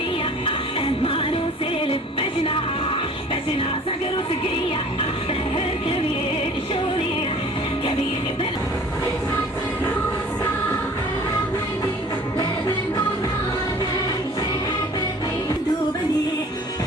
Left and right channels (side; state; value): both; normal; correlation 0.48